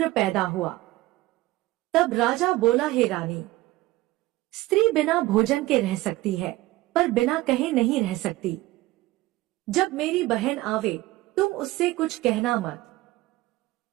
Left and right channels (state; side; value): quieter; left; 18.3 dB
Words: पैदा हुआ। तब राजा बोला, हे रानी, स्त्री बिना भोजन के रह सकती है, पर बिना कहे नहीं रह सकती। जब मेरी बहन आवे तुम उससे कुछ कहना